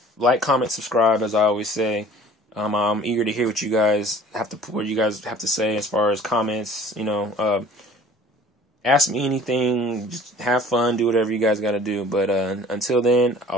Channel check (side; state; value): both; normal; correlation 0.49